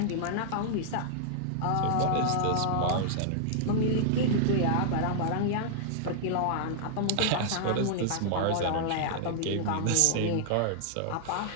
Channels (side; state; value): both; different; correlation -0.01